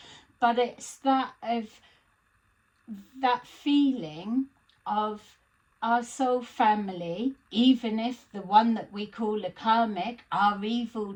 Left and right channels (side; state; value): both; identical; correlation 1.00